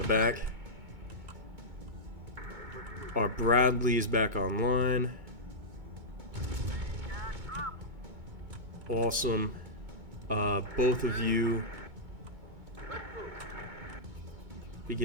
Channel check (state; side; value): late; left; 2.2 ms